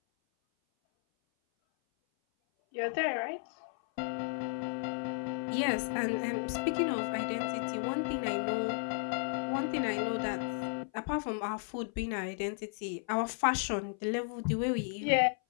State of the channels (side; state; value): right; silent; 55 dB below the other